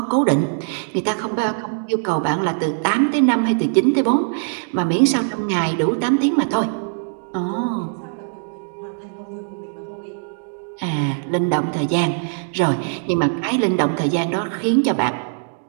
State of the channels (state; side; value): silent; left; digital silence